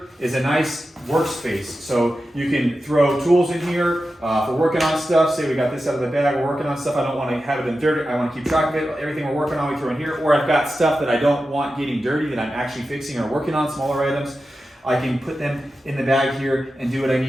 is a nice workspace. So you can throw tools in here for working on stuff. Say we got this out of the bag, we're working on stuff. I don't want to have it in dirty. I want to keep track of it. Everything we're working on, we throw in here. Or I've got stuff that I don't want getting dirty that I'm actually fixing or working on, smaller items. I can put them in the bag here and do what I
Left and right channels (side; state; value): both; normal; correlation 0.92